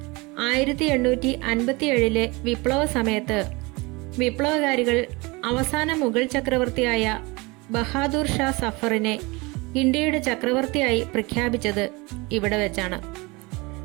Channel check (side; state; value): left; quieter; 25.1 dB